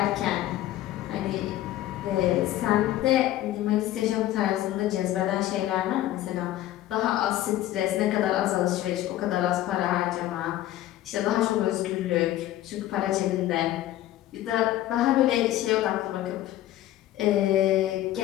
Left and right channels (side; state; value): right; quieter; 14.1 dB